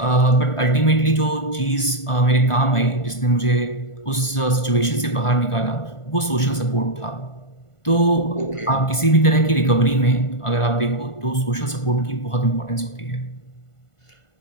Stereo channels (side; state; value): right; late; 1.5 ms